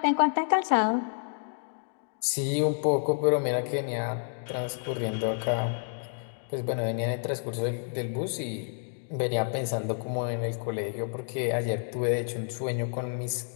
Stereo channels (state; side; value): silent; right; 58 dB below the other